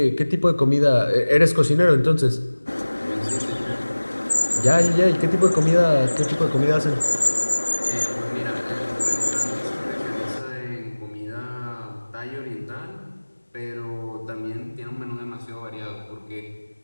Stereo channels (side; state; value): both; inverted; correlation -1.00